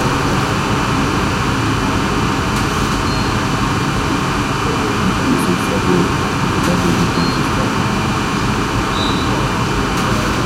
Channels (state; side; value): identical; both; correlation 1.00